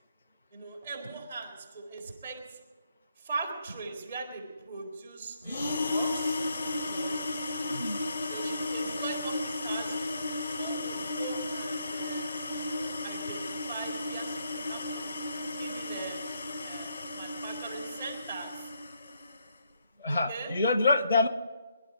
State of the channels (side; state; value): both; inverted; correlation -0.76